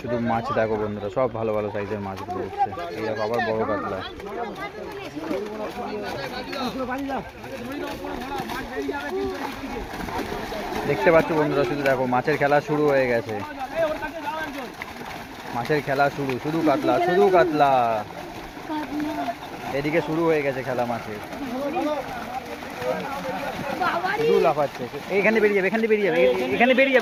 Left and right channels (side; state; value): both; identical; correlation 1.00